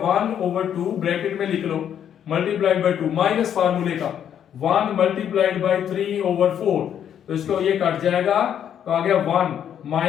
1/2 ब्रैकेट में लिख लो, मल्टीप्लाइड बाय 2 माइनस फार्मूले का, 1 मल्टीप्लाइड बाई 3/4, तो इसको ये कट जाएगा तो आ गया 1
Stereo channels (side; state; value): right; quieter; 9.3 dB